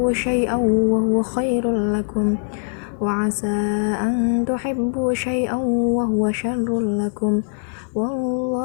syai'an wa huwa khairul lakum wa asa an tuhibbu syai'an wa huwa syarrul lakum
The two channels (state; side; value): silent; right; digital silence